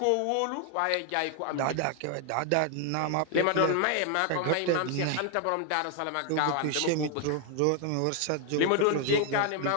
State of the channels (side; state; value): both; different; correlation 0.00